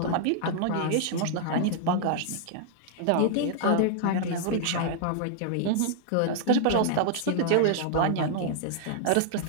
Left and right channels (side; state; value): both; different; correlation -0.01